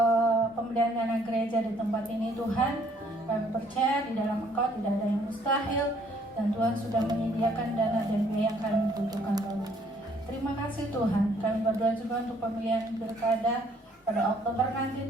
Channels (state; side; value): normal; both; correlation 0.63